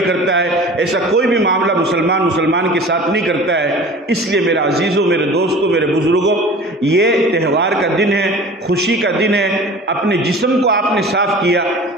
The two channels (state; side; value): normal; both; correlation 0.41